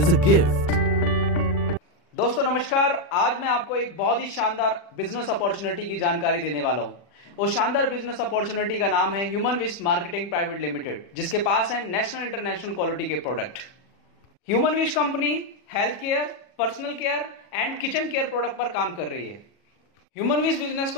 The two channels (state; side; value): late; right; 40 ms